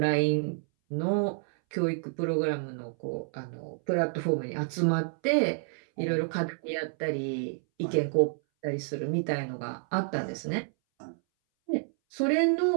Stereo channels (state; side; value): silent; left; 58 dB below the other